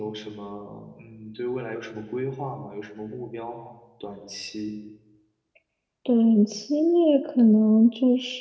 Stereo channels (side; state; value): both; identical; correlation 1.00